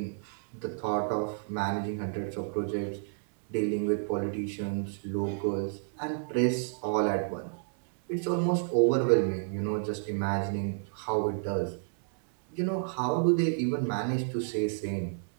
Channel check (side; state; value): left; silent; 58 dB below the other